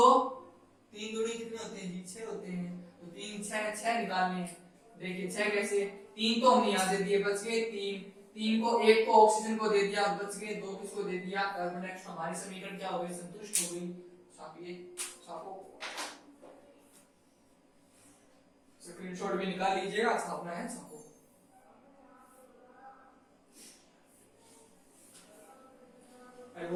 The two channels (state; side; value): identical; both; correlation 1.00